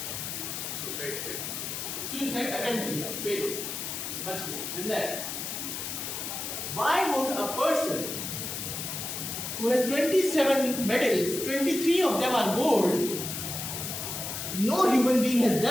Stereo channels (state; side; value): noise; left; hiss, 5 dB below the sound